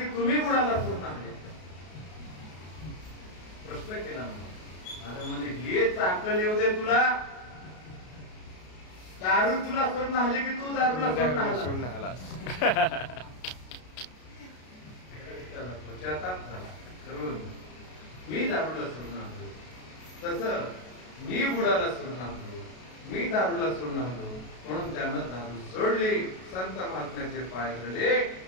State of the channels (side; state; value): right; late; 33 ms